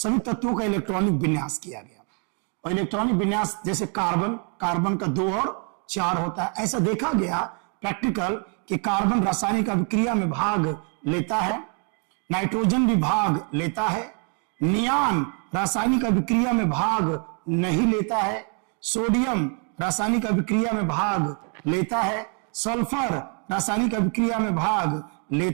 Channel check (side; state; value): left; quieter; 39.3 dB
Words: तत्वों का इलेक्ट्रॉनिक विन्यास किया गया। और इलेक्ट्रॉनिक विन्यास जैसे कार्बन का 2 और 4 होता है, ऐसा देखा गया प्रैक्टिकल कि कार्बन रासायनिक अभिक्रिया में भाग लेता है, नाइट्रोजन भी भाग लेता है, नियान रासायनिक अभिक्रिया में भाग नहीं लेता है, सोडियम रासायनिक अभिक्रिया में भाग लेता है, सल्फर रासायनिक अभिक्रिया में भाग